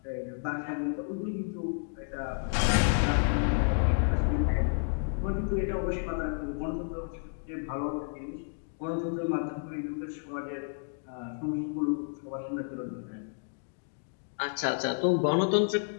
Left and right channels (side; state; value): right; silent; 57 dB below the other